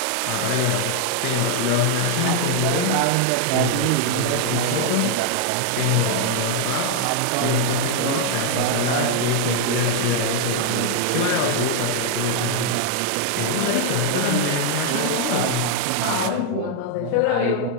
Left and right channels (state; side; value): different; both; correlation 0.00